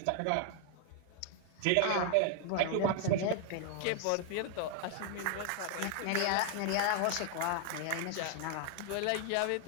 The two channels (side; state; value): both; different; correlation 0.00